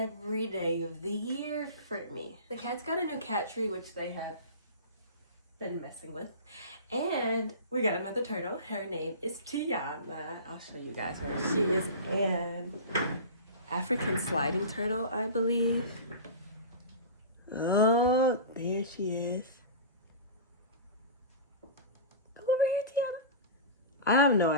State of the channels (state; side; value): inverted; both; correlation -0.32